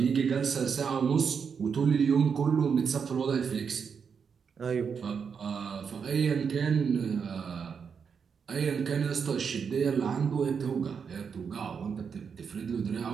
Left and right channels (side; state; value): left; quieter; 6.4 dB